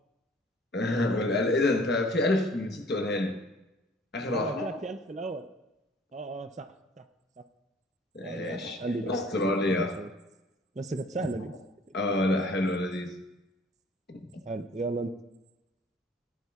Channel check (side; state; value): both; normal; correlation 0.53